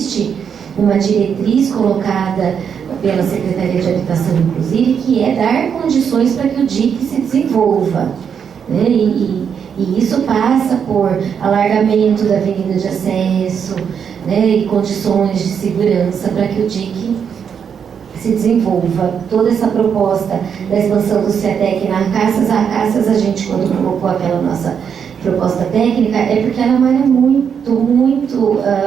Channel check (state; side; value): quieter; left; 7.3 dB